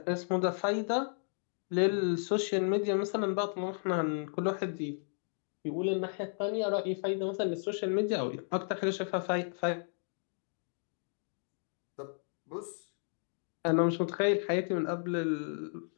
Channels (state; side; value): silent; right; digital silence